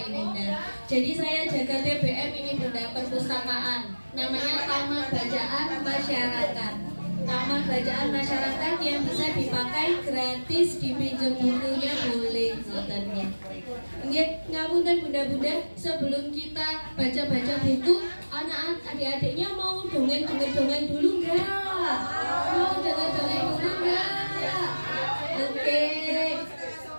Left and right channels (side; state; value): both; inverted; correlation -1.00